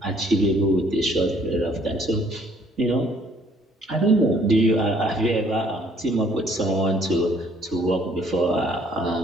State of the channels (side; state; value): both; normal; correlation 0.61